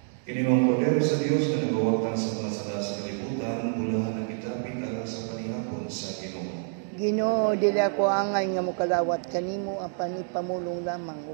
Kini ang poder sa Dios na nagawagtan sa mga sala sa kalibutan, bulahan ang itapit alang sa panihapon sa Ginoo. Ginoo, dili ako angay nga mokalawat kanimo, ang panipamulong lamang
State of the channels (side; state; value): left; silent; 60 dB below the other